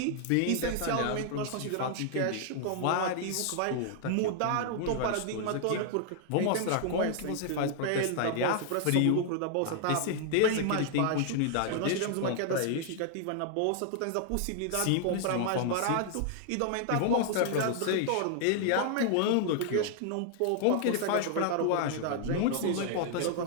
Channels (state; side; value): different; both; correlation 0.00